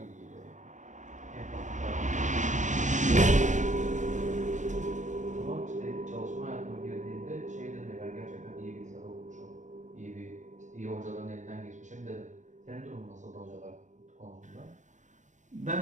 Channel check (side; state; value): left; late; 0.35 ms